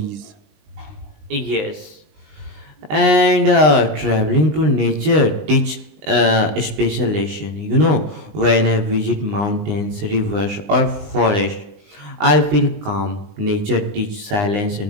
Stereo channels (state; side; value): late; left; 20 ms